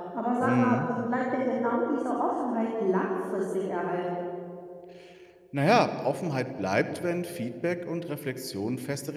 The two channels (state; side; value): identical; both; correlation 1.00